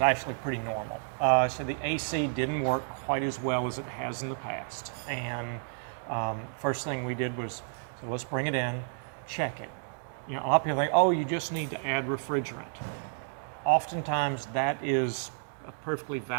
pretty normal. So the AC didn't work quite as well as it has in the past. And first thing we did was, so let's bring it in, check it. You know, a lot of people think, oh, you just need to add refrigerant. Oftentimes that is a perfectly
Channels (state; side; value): silent; left; digital silence